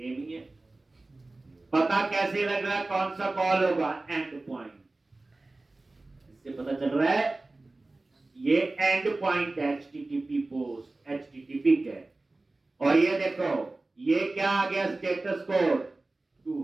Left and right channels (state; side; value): quieter; left; 3.1 dB